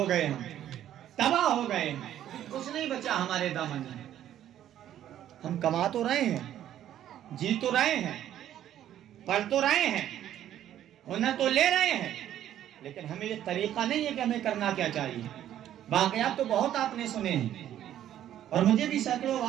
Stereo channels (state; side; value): quieter; left; 11.5 dB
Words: گئے ہم، تباہ ہو گئے ہیں، کچھ نہیں بچا ہمارے دامن میں۔ ہم کما تو رہے ہیں، جی تو رہے ہیں، پڑھ تو رہے ہیں، ہنر تو لے رہے ہیں، لیکن ہمیں یہ طریقہ نہیں ہے کہ ہمیں کرنا کیا چاہیے۔ واقعات تو بہت آپ نے سنے ہیں، اور مجھے بھی سینکڑوں